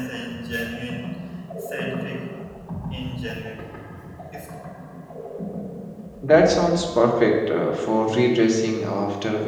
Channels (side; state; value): both; identical; correlation 1.00